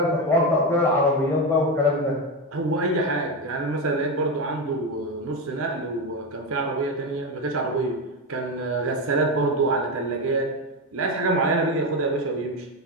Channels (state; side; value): normal; both; correlation 0.13